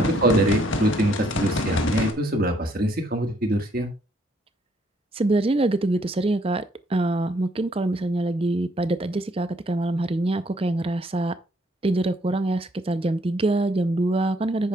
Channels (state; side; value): normal; both; correlation 0.68